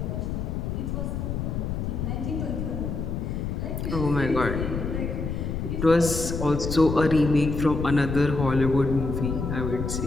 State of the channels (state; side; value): noise; left; rumble, 3 dB below the sound